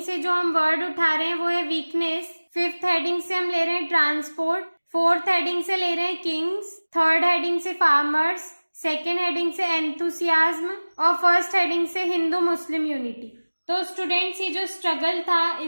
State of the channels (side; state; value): both; inverted; correlation -1.00